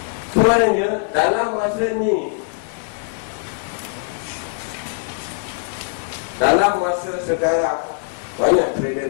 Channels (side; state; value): right; silent; digital silence